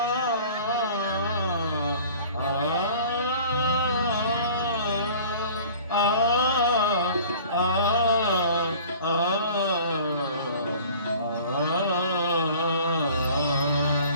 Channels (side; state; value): both; inverted; correlation -0.46